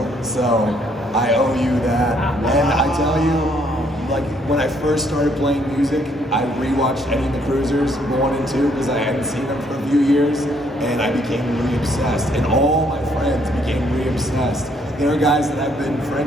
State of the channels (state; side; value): normal; both; correlation 0.68